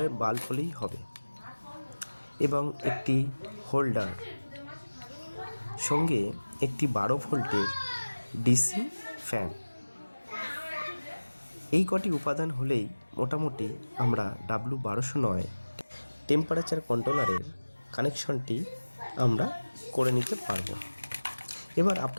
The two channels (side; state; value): both; inverted; correlation -1.00